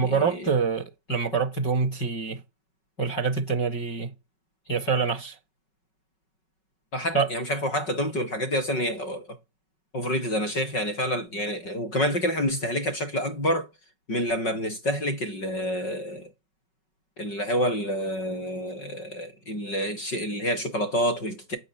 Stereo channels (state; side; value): late; right; 5.4 ms